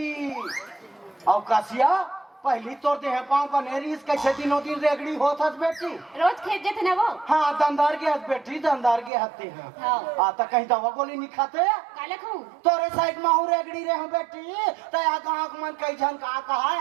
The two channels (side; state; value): left; drops out; at 9.1 s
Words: और कासिया पहली तोर दे है पाँव बनेरी इस कैसे दिनों दिन रेगड़ी होत हस बेटी रोज खेत जेते ना वो हाँ दंदार के हस बेटी दंदार के हते हैं हाँ आता कहीं दवा गोली नहीं खाते काले खाऊं तोरे साइड में हूँ रेगड़ी रे हूँ बेटी तो यहाँ कहाँ मन कई जन कहा